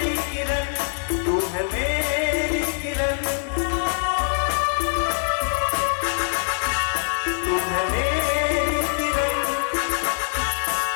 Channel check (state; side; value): silent; right; 58 dB below the other